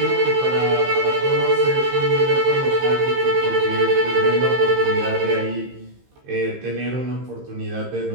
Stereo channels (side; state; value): left; late; 15 ms